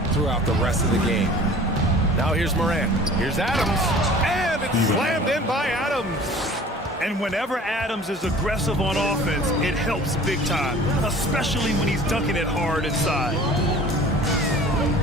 throughout the rest of the game. Now here's Morant. Here's Adams. And it's slammed in by Adams. And whenever Adams is aggressive on offense, it helps big time, especially when he's dunking it hard inside.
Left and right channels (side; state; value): both; normal; correlation 0.46